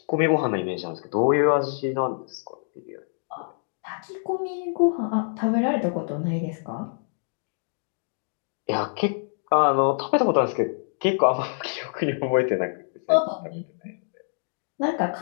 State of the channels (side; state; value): right; silent; 61 dB below the other